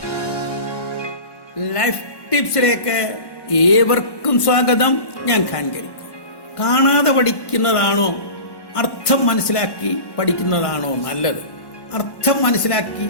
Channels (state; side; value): late; right; 1.1 ms